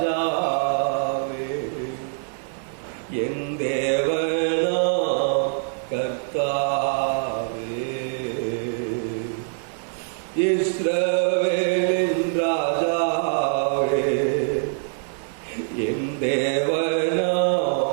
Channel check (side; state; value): left; silent; digital silence